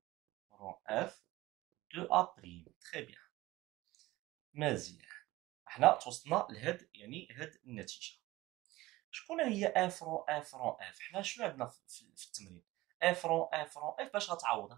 اف دو ا بريم. تري بيان. مزيان، حنا توصلنا لهاد يعني هاد النتيجه. شكون هي اف رون اف؟ حنا شنو عندنا في التمرين؟ اف رون اف باش غتعوضها؟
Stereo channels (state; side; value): quieter; left; 18.5 dB